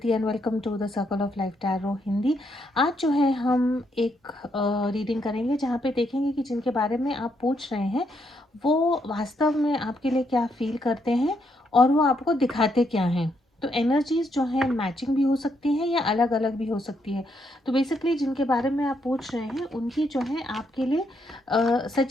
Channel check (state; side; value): normal; both; correlation 0.76